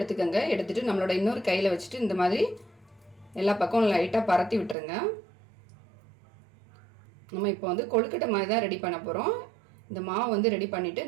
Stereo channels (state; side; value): drops out; left; at 4.8 s